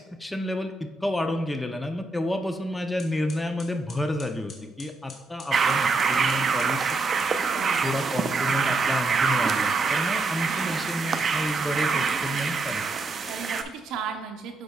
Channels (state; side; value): quieter; left; 3.0 dB